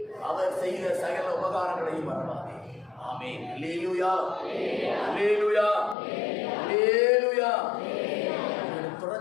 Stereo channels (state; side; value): drops out; right; at 6.0 s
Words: அவர் செய்த சகல உபகாரங்களையும் மறவாதே. ஆமென். அல்லேலூயா, அல்லேலூயா, அல்லேலூயா.